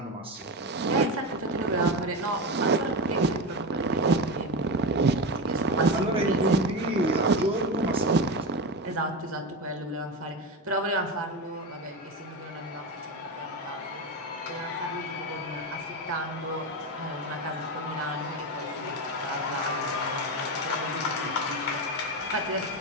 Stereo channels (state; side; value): normal; both; correlation 0.18